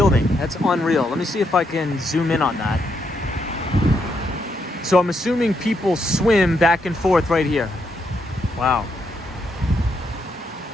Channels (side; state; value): both; normal; correlation 0.78